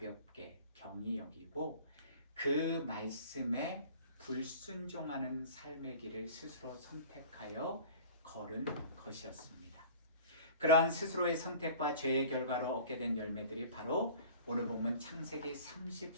경히 여기고 그 말씀에 불순종하는 삶의 길을 스스로 선택하여 걸은 것이었습니다. 그러한 스스로의 선택과 죄의 결과로 얻게 된 열매들이 바로 오늘 본문 창세기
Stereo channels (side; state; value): both; inverted; correlation -0.44